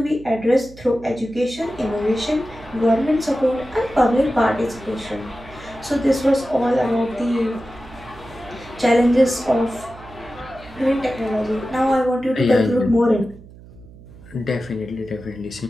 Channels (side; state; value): right; noise; hum, 20 dB below the sound